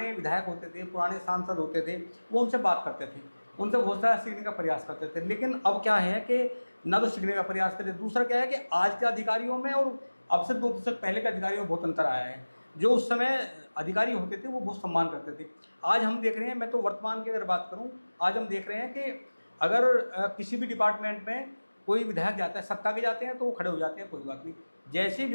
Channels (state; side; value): inverted; both; correlation -1.00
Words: विधायक होते थे, पुराने सांसद होते थे, वो उनसे बात करते थे, उनसे बहुत सारा सीखने का प्रयास करते थे। लेकिन अब क्या है कि ना तो सीखने का प्रयास करते, दूसरा क्या है कि आज के अधिकारियों में और अब से 2 दशक पहले के अधिकारियों में बहुत अंतर आया है। जो उस समय अधिकारी होते थे वो बहुत सम्मान करते थे। आज हम देख रहे हैं, मैं तो वर्तमान की अगर बात करूं, आज हम देख रहे हैं कि अगर किसी भी डिपार्टमेंट में कोई विधायक जाता है, सत्ता के जाते हैं तो वो खड़े हो जाते हैं, कोई बात नहीं। जैसे ही